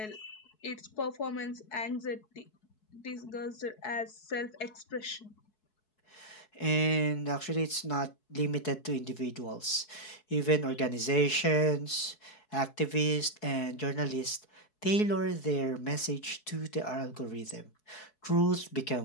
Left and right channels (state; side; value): late; right; 4.7 ms